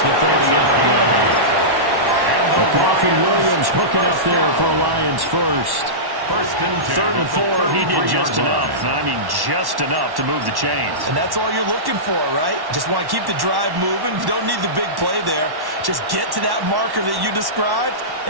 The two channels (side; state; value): left; late; 1.1 ms